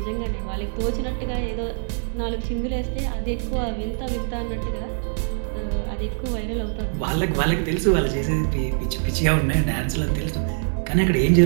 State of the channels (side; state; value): left; silent; digital silence